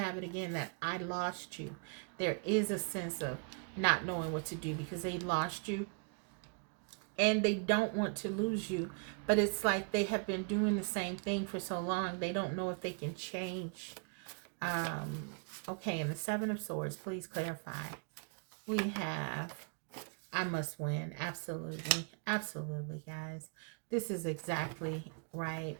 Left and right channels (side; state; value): left; quieter; 38.5 dB